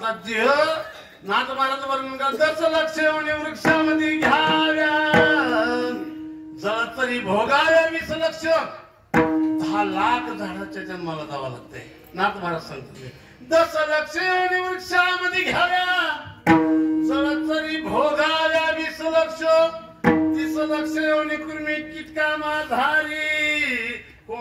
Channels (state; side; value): identical; both; correlation 1.00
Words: देह नाथ महाराज वर्णन करत लक्ष वृक्षामध्ये घ्याव्या जळ तरी भोगाव्या 20 लक्ष 10 लाख झाडाच्या जन्माला जावं लागतंय. नाथ महाराज सांगते 10 लक्ष वृक्षामध्ये घ्याव्या जळ तरी भोगाव्या 20 लक्ष 30 लक्ष कुर्मी किटका माधारी